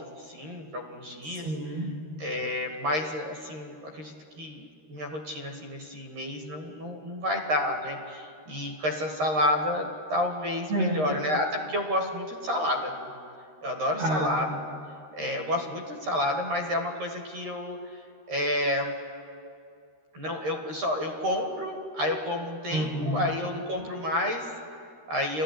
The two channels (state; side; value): late; left; 13 ms